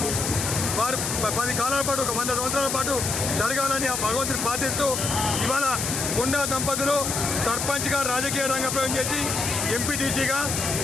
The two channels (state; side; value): noise; left; hiss, 2 dB below the sound